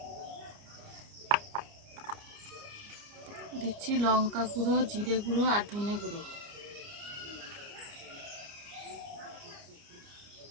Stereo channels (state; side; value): late; left; 29 ms